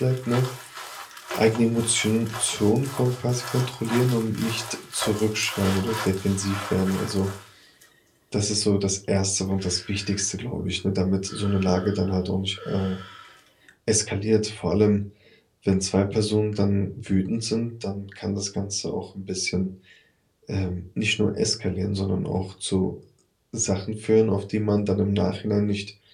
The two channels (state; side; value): identical; both; correlation 1.00